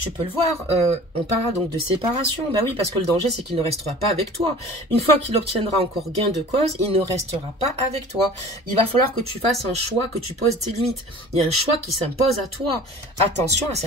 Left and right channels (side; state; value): both; normal; correlation 0.43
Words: peux le voir, on parlera donc de séparation. Ben oui, parce que le danger, c'est qu'il ne restera pas avec toi. Une fois qu'il obtiendra encore gain de cause, il ne restera pas avec toi. Il va falloir que tu fasses un choix, que tu poses tes limites. Il y a un choix qui s'impose à toi. Attention à